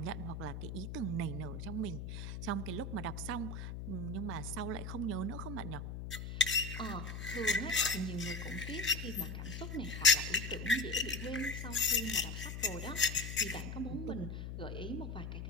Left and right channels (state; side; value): noise; left; hum, 6 dB below the sound